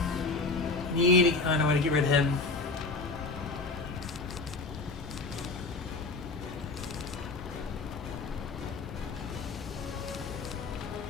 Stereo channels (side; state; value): right; quieter; 3.7 dB